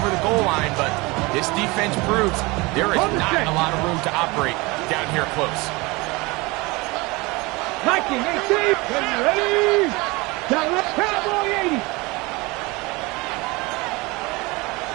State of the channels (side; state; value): left; quieter; 24.2 dB